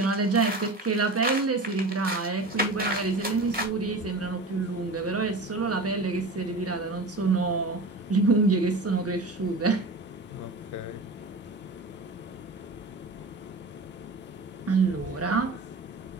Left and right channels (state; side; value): quieter; left; 3.0 dB